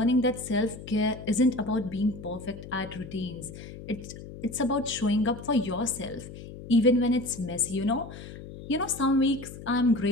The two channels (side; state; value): left; noise; hum, 13 dB below the sound